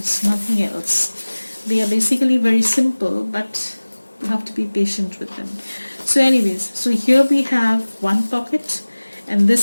nothing else. They are basically very simple, but you have to be patient with them. So anyways, so here we have one pocket, and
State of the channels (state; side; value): inverted; both; correlation -1.00